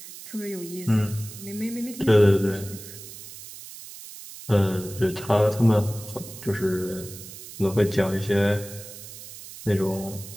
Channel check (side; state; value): right; noise; hiss, 14 dB below the sound